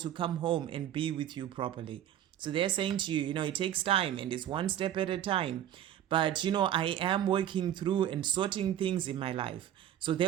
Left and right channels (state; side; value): quieter; left; 11.1 dB